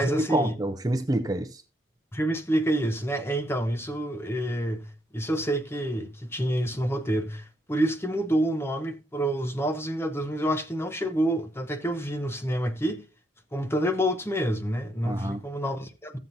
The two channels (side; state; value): both; normal; correlation 0.76